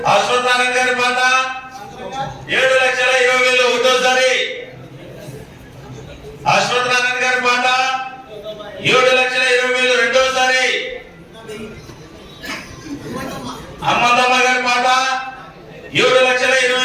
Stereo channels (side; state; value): both; identical; correlation 1.00